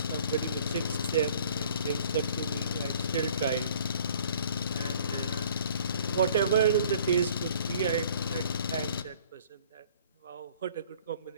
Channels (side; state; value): both; inverted; correlation -0.54